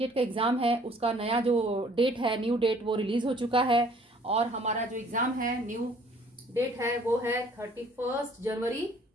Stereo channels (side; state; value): both; normal; correlation 0.57